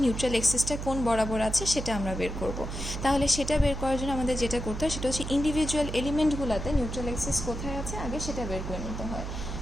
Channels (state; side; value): noise; right; hum, 6 dB below the sound